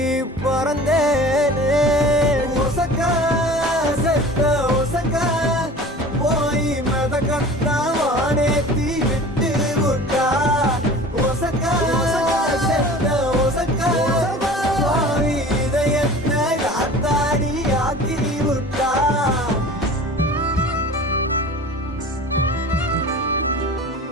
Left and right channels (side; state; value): both; normal; correlation 0.41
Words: பறந்தேனே ஒசக்கா செத்த ஒசக்கா போய் மதக்கத்தா வானேத்தி விட்டு விட்டா ஒசக்கா செத்த ஒசக்கா பாவி இதயத்தை காத்தாடி ஆக்கி விட்டா